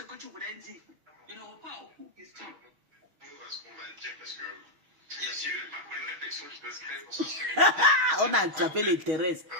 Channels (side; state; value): left; late; 6.4 ms